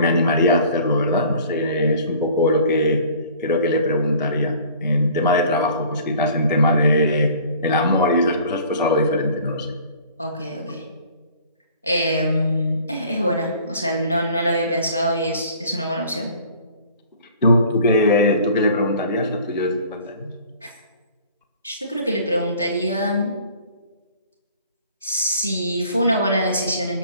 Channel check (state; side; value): inverted; both; correlation -0.50